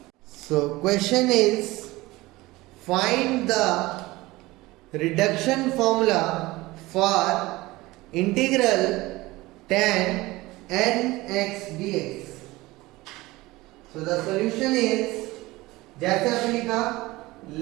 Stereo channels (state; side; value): quieter; left; 19.9 dB